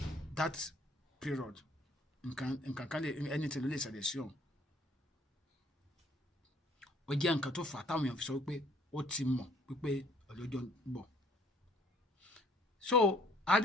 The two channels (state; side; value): normal; both; correlation 0.59